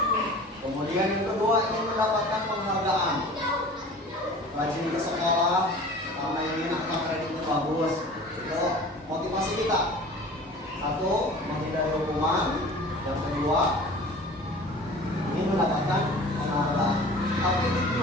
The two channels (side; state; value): both; normal; correlation 0.42